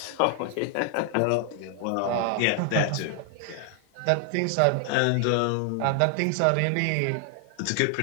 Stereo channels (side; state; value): both; different; correlation 0.00